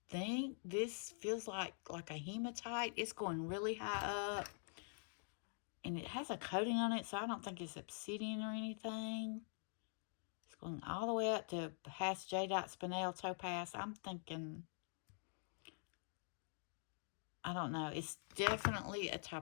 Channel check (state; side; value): silent; right; digital silence